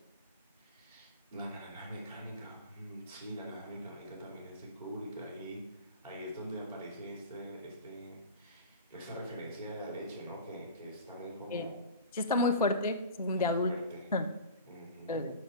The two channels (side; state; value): both; inverted; correlation -0.34